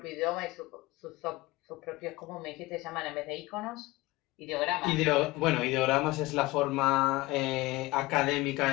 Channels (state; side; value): quieter; right; 20.5 dB